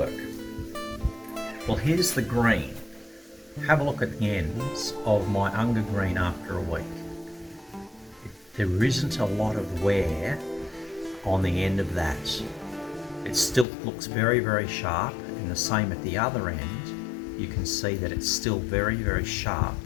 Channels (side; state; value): right; drops out; at 13.7 s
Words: Well, here's the green. Have a look at the ends of my Unga Green after a week. There isn't a lot of wear on the end of that. It still looks very, very sharp, and the same at the other end. You can see that it's still very, very sharp,